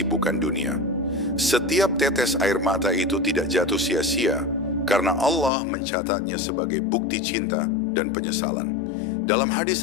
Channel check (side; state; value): right; drops out; at 5.5 s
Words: dunia. Setiap tetes air mata itu tidak jatuh sia-sia, karena Allah mencatatnya sebagai bukti cinta dan penyesalan. Dalam hadis